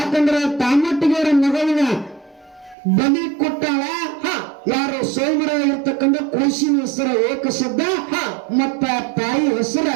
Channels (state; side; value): drops out; left; at 2.8 s